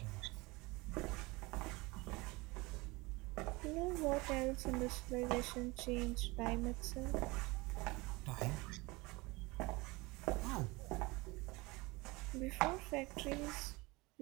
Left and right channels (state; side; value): quieter; left; 23.7 dB